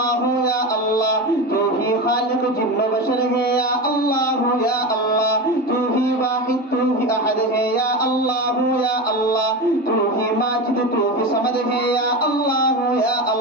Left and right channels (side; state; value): both; normal; correlation 0.23